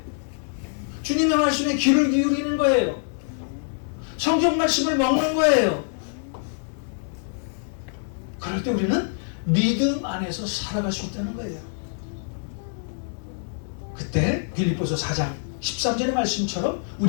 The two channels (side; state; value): right; silent; digital silence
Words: 주님의 말씀에 귀를 기울이는 거예요. 성경 말씀을 먹는 거예요. 그때 우리는 믿음 안에서 살아갈 수 있다는 거예요. 그때 빌립보서 4장 13절의 말씀처럼